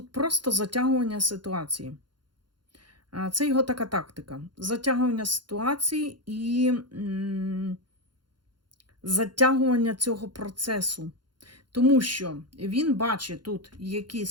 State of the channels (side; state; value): left; late; 0.71 ms